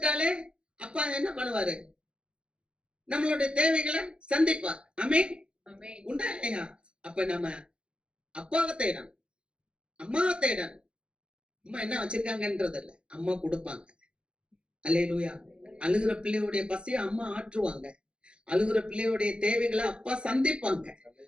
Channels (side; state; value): left; late; 0.055 ms